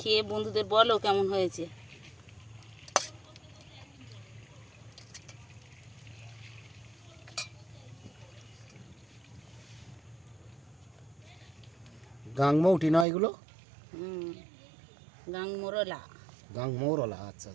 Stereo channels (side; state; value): left; drops out; at 13.1 s